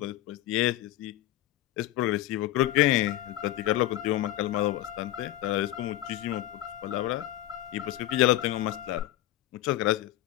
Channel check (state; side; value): quieter; right; 14.3 dB